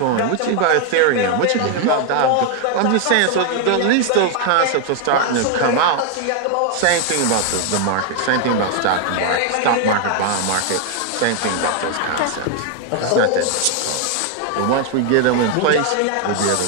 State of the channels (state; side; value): different; both; correlation 0.00